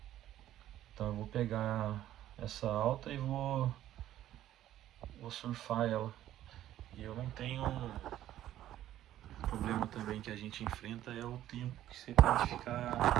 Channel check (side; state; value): left; quieter; 12.8 dB